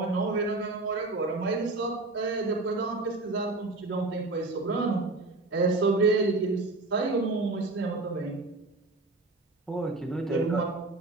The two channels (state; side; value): quieter; left; 3.1 dB